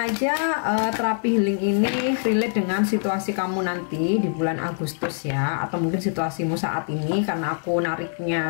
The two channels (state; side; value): silent; right; digital silence